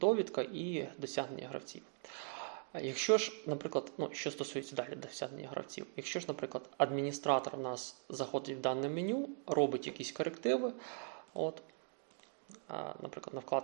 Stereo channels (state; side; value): silent; left; 51 dB below the other